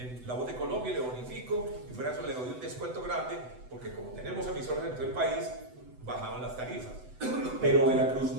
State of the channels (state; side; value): late; left; 8.0 ms